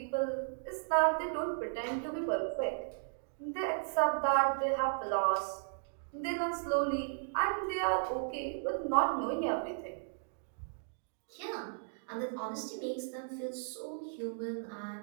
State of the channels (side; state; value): left; silent; digital silence